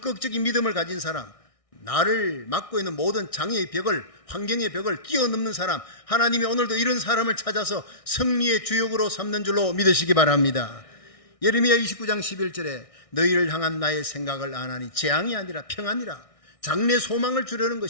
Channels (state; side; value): late; right; 1.6 ms